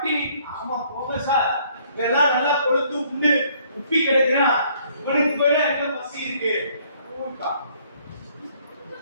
ஆமா போங்க சார், இதெல்லாம் நல்லா கொழுத்து உண்டு உப்பி கிடக்குறான், உனக்கு போயில என்ன பசி இருக்கு?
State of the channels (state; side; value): inverted; both; correlation -0.63